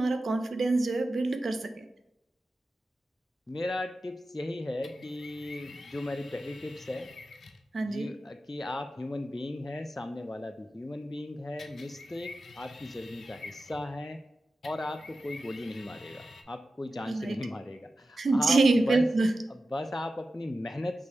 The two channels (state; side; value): normal; both; correlation 0.93